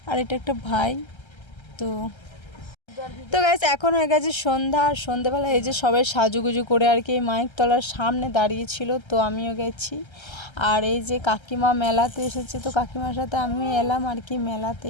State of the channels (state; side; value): late; right; 1.3 ms